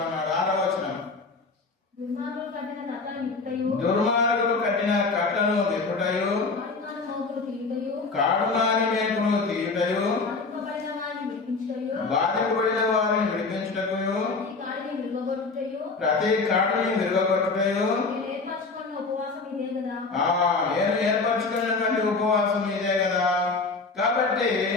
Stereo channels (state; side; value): quieter; right; 4.0 dB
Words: ఉన్నాడు. 6వ వచనం. దుర్మార్గులు కట్టిన కట్లను విప్పుటయు, కాడుమాని మేకును తీయుటయు, బాధింపబడిన వారిని విడిపించుటకు, ప్రతి కాడుని విరగొట్టుటయు నేను ఏర్పరచుకున్నటువంటి ఉపవాసం ఇదే కదా. కాబట్టి